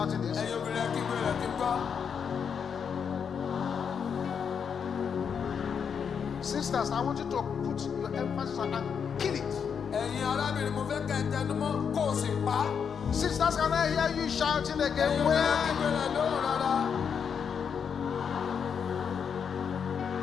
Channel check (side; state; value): right; quieter; 7.0 dB